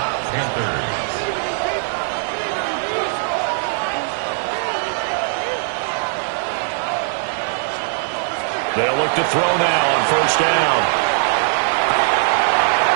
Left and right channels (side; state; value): left; silent; digital silence